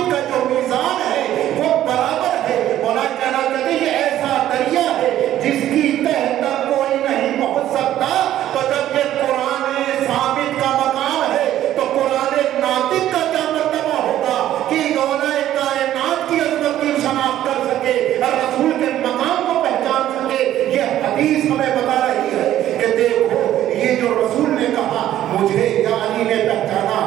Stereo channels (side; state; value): left; quieter; 12.5 dB